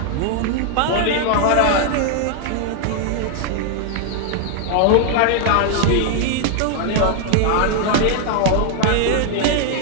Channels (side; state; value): both; different; correlation 0.00